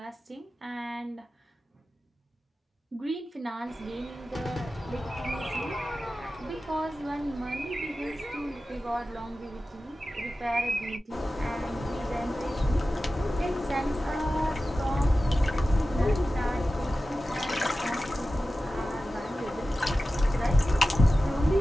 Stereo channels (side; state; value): both; normal; correlation 0.94